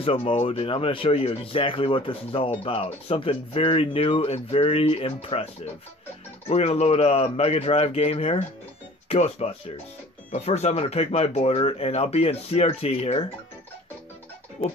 mode, and I'm going to show you exactly what this is all about. Something very new and very impressive. We're going to load a Mega Drive game here, Ghostbusters. But first I'm going to pick my border, and I'll be in CRT here. We'll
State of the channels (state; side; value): normal; both; correlation 0.48